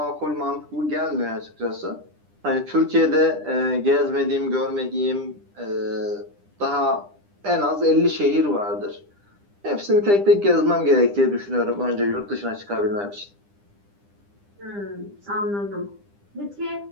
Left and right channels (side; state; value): left; late; 9.9 ms